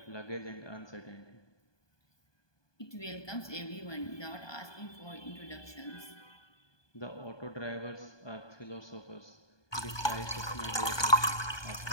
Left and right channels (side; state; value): right; late; 1.2 ms